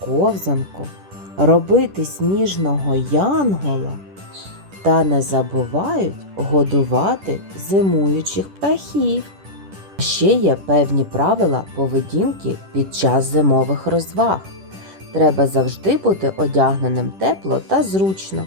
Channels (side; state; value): left; late; 10 ms